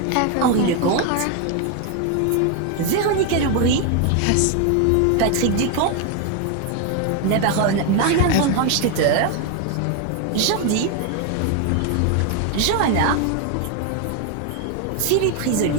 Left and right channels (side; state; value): both; different; correlation 0.01